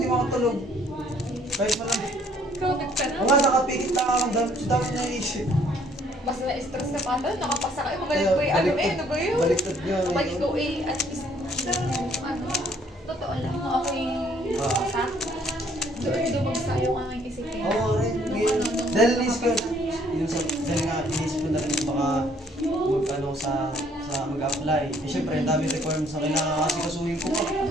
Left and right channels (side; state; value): both; normal; correlation 0.63